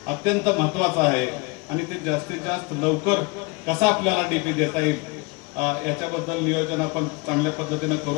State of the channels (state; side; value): quieter; right; 27.9 dB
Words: अत्यंत महत्वाचा आहे आणि ते जास्तीत जास्त लवकर कसा आपल्याला डीपी देता येईल याच्याबद्दल नियोजन आपण चांगल्या पद्धतीने